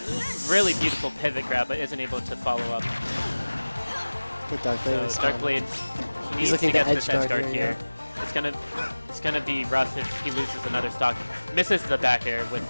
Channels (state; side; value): inverted; both; correlation -1.00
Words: really beautiful pivot grab, but isn't able to follow up. With Darkblade So is Darkblade needs looking to to get this edge edge guard guard here, here. It's gonna be rough if he loses another stock. Misses the back air with